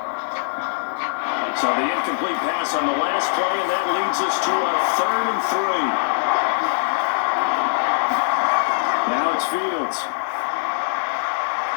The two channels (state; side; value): silent; right; digital silence